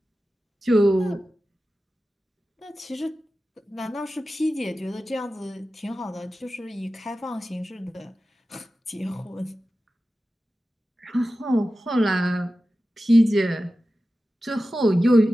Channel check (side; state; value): both; normal; correlation 0.94